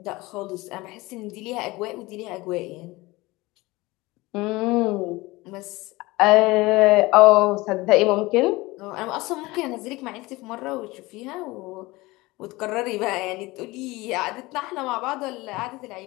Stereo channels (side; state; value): right; quieter; 21.3 dB